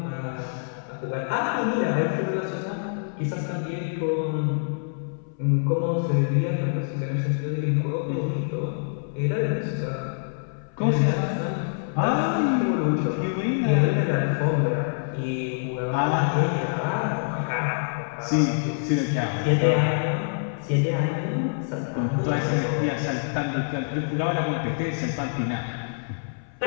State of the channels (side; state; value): right; silent; 61 dB below the other